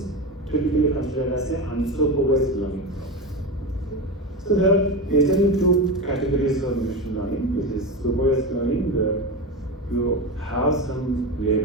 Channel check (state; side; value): normal; both; correlation 0.20